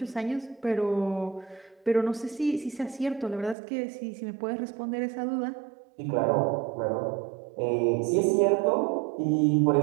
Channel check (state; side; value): drops out; left; at 3.6 s